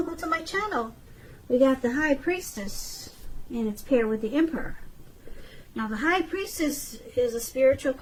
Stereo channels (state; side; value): identical; both; correlation 1.00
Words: to my channel. We got the High Priestess, and it's paired with the Emperor. Now, the High Priestess is a spiritual